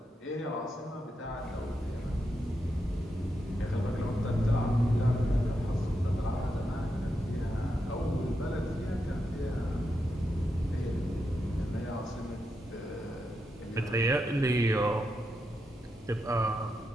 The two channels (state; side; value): normal; both; correlation 0.85